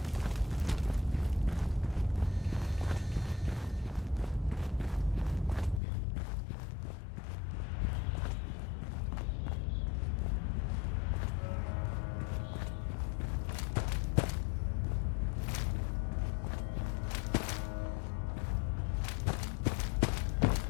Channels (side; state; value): right; drops out; at 5.8 s